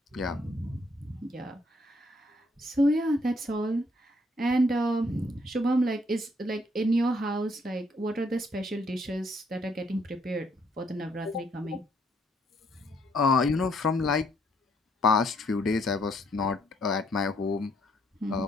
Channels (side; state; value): both; normal; correlation 0.69